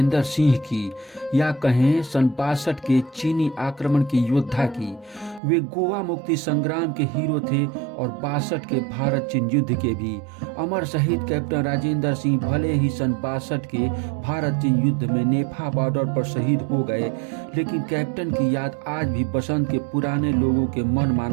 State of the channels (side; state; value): left; drops out; at 5.4 s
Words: सिंह की या कहें सन 62 के चीनी आक्रमण के योद्धा की। वे गोवा मुक्ति संग्राम के हीरो थे और 62 के भारत चीन युद्ध के भी। अमर शहीद कैप्टन राजेंद्र सिंह भले ही सन 62 के भारत चीन युद्ध में नेफा बॉर्डर पर शहीद हो गए, लेकिन कैप्टन की याद आज भी बसंत के पुराने लोगों के मन